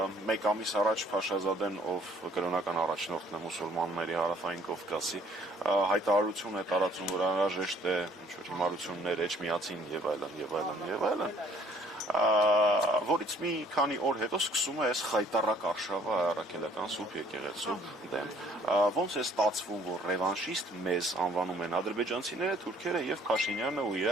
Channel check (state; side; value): normal; both; correlation 0.59